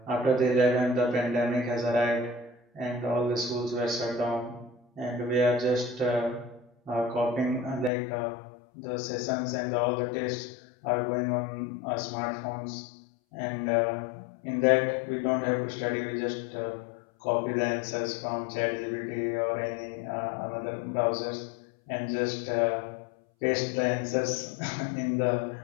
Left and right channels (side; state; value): right; drops out; at 7.9 s